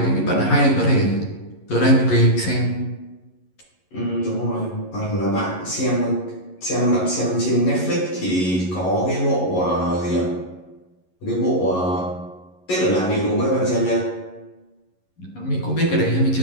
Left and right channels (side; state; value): right; late; 11 ms